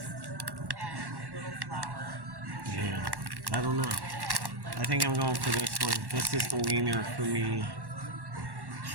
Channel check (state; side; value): late; left; 1.1 ms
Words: and a little flour. Yeah, I don't know. I think I'm going for this one. This is the wiener for me.